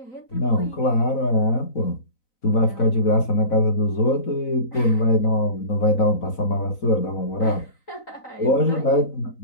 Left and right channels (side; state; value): right; late; 4.1 ms